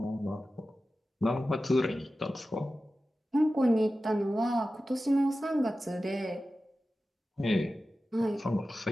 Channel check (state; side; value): normal; both; correlation 0.94